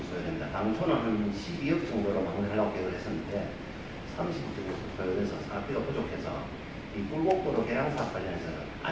소요됩니다. 당초는 한 12억 정도로 마무리하려고 계획을 했었는데 30억 정도 소요돼서 사업비가 부족해서 이 꿀곡도로 개량 사업 관련해서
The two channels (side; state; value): both; identical; correlation 1.00